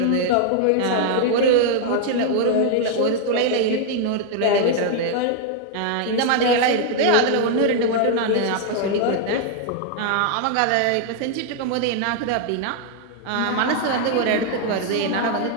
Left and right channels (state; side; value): different; both; correlation 0.00